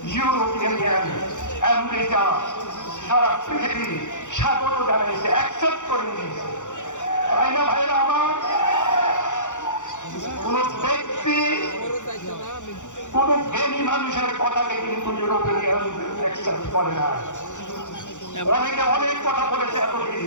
ইউরোপিয়ান ইউনিয়ন, আমেরিকা, সারা পৃথিবী স্বাগত জানিয়েছে, অ্যাকসেপ্ট করে নিয়েছে। তাই না ভাইরা আমার? কোন ব্যক্তি, কোন জ্ঞানী মানুষের কথাকে কিন্তু ইউরোপিয়ান ইউনিয়ন অ্যাকসেপ্ট করে না। অনেকে অনেক কথা বলেছে এতদিন,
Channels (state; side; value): late; right; 0.85 ms